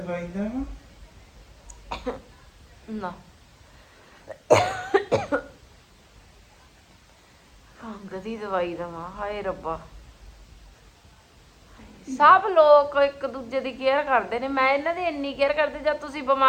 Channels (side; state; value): both; identical; correlation 1.00